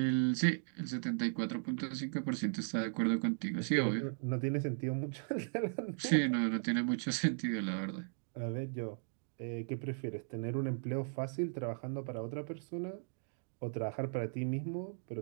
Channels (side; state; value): left; silent; digital silence